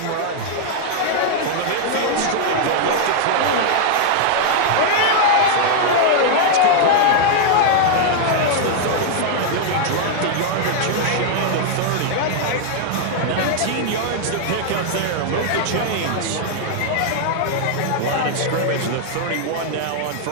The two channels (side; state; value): both; different; correlation 0.00